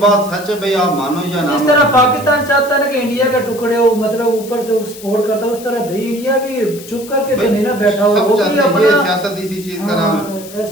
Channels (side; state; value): left; noise; hiss, 16 dB below the sound